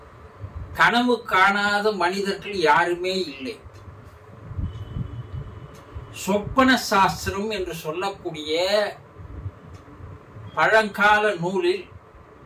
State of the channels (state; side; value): identical; both; correlation 1.00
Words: கனவு காணாத மனிதர்கள் யாருமே இல்லை. சொப்பன சாஸ்திரம் என்று சொல்லக்கூடிய பழங்கால நூலில்